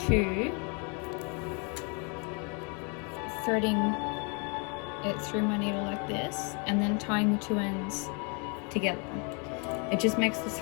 two, threading it through my needle like this, and then tying the two ends together. It just makes the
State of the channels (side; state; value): right; quieter; 35.1 dB